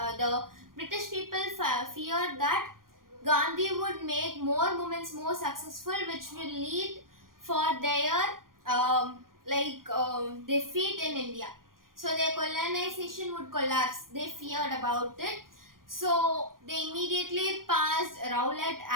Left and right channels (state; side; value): late; left; 0.91 ms